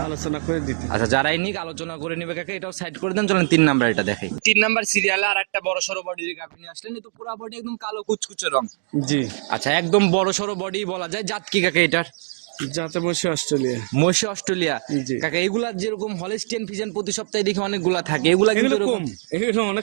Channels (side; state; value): left; silent; digital silence